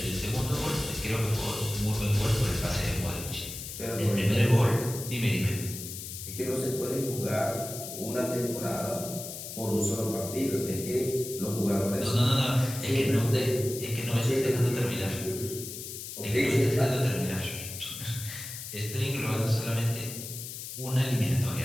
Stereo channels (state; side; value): noise; left; hiss, 9 dB below the sound